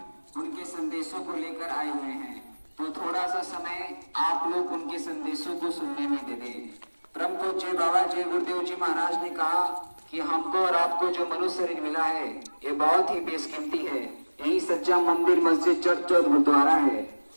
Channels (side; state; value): both; inverted; correlation -1.00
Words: उनके संदेशों को लेकर आए हुए हैं। तो थोड़ा सा समय आप लोग उनके संदेशों को सुनने में दे दें। परम पूज्य बाबा जय गुरुदेव जी महाराज ने कहा कि हमको और आपको जो मनुष्य शरीर मिला है ये बहुत ही बेशकीमती है। यही सच्चा मंदिर, मस्जिद, चर्च और गुरुद्वारा है।